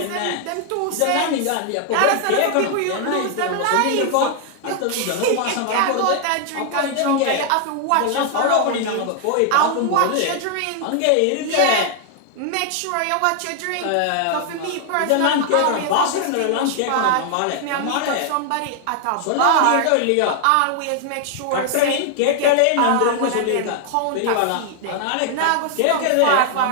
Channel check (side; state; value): both; different; correlation 0.00